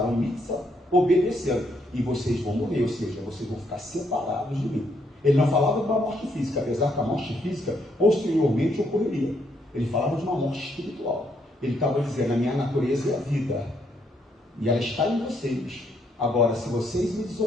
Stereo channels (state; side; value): normal; both; correlation 0.73